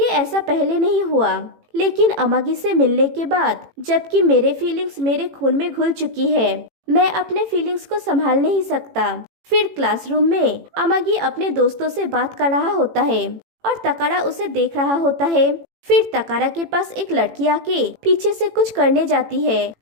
ऐसा पहले नहीं हुआ, लेकिन अमागी से मिलने के बाद जबकि मेरे फीलिंग्स मेरे खून में घुल चुकी है, मैं अपने फीलिंग्स को संभाल नहीं सकता। फिर क्लासरूम में अमागी अपने दोस्तों से बात कर रहा होता है और तकारा उसे देख रहा होता है। फिर तकारा के पास एक लड़की आके पीछे से कुछ करने जाती है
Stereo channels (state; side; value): late; left; 18 ms